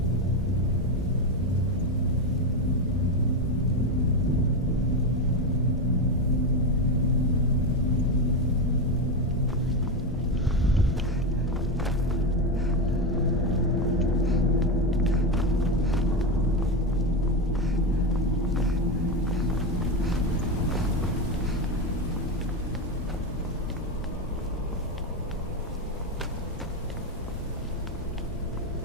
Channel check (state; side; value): normal; both; correlation 0.12